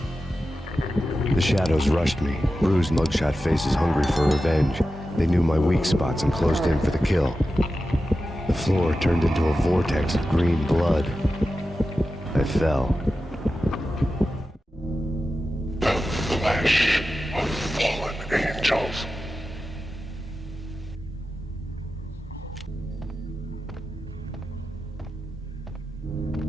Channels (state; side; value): normal; both; correlation 0.92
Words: The shadows rushed me, bruised mugshot faces hungry for revenge. They knew my weak spots and closed in for the kill. The floor turned into a vortex of green blood. I fell. The flesh of fallen angels.